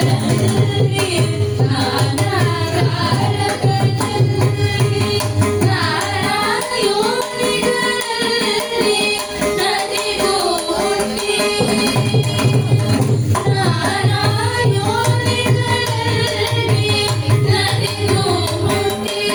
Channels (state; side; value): identical; both; correlation 1.00